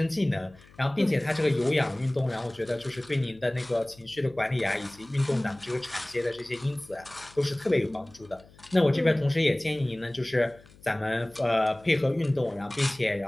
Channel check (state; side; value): noise; left; hum, 25 dB below the sound